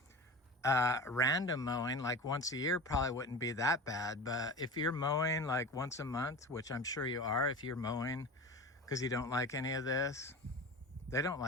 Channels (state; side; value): normal; both; correlation 0.32